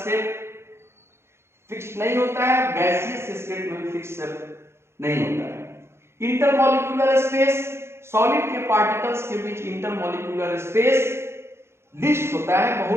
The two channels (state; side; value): late; left; 0.12 ms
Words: फिक्स नहीं होता है, गैसियस स्टेट में भी फिक्स नहीं होता है। इंटरमॉलिक्यूलर स्पेस, सॉलिड के पार्टिकल्स के बीच इंटरमॉलिक्यूलर स्पेस लिस्ट होता है,